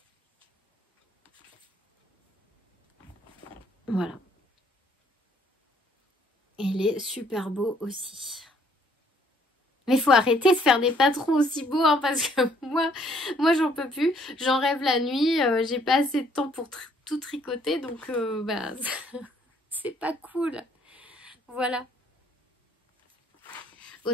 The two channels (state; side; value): normal; both; correlation 0.64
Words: Voilà. Il est super beau aussi. Mais il faut arrêter de faire des patrons aussi beaux, hein, parce que moi j'en peux plus. J'en rêve la nuit. J'ai pas assez de temps pour tout tricoter. Donc, bah, c'est pas cool. Voilà.